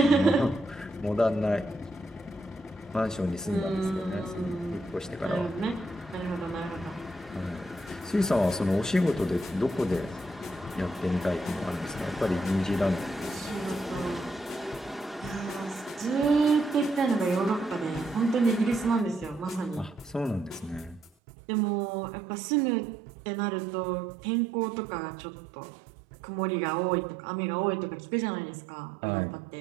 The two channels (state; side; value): drops out; left; at 21.1 s